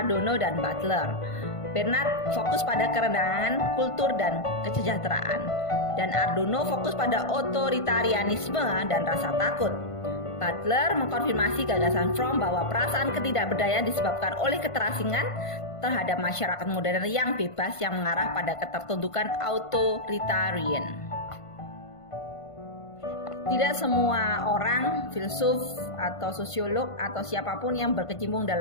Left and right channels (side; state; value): right; late; 1.5 ms